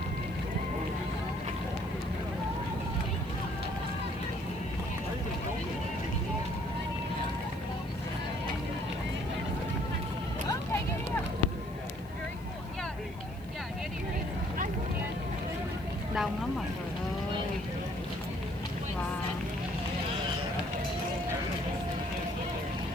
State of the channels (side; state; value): left; noise; hiss, 25 dB below the sound